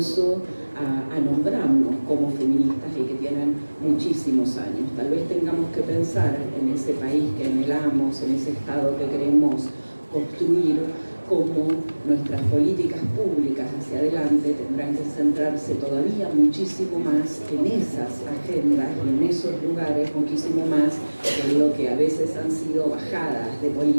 a nombrarnos como feministas y que tienen muchísimos años. Tal vez tengamos que pensar en ese país que anhelamos, en ese Estado que queremos construir, cómo nuestras políticas públicas hacia adelante tendrán que centrarse todavía muchísimo más en esas agendas y en esos lugares, muchísimo más en lo que a veces han sido bajadas de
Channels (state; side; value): inverted; both; correlation -1.00